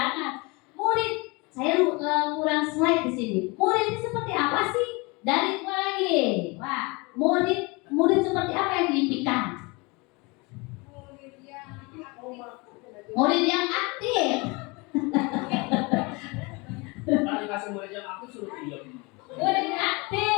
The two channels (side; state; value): right; quieter; 27.0 dB